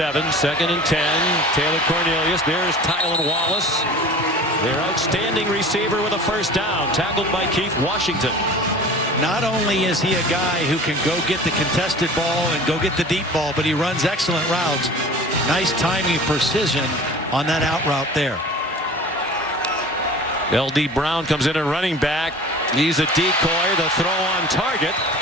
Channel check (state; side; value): normal; both; correlation 0.40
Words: 2nd and 10. Taylor Cornelius. There's Tylan Wallace, their outstanding receiver, with a first down, tackled by Keith Washington. Not only is he a guy who can go get the contested ball and go get the deep ball, but he runs excellent routes. Nice timing, precision on that out route there. L.D. Brown comes in at running back. He's a decoy. The throw on target.